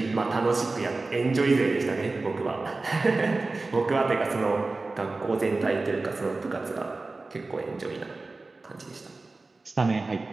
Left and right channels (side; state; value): left; quieter; 3.5 dB